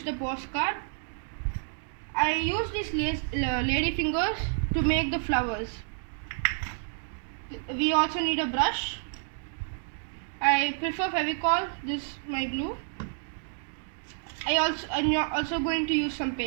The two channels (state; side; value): silent; left; digital silence